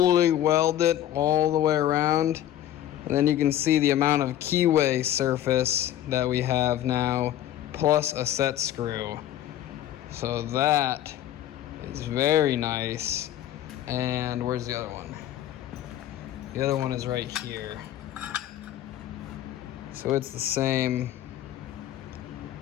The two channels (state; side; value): quieter; right; 12.3 dB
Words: weld it all the way around. And then you can see the amount of keyway surface that we have now, plus a set screw. So that is very nice. And where's the other one? The other one is right here. So it's the same.